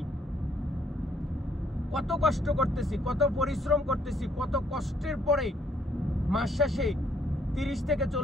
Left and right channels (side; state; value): both; normal; correlation 0.68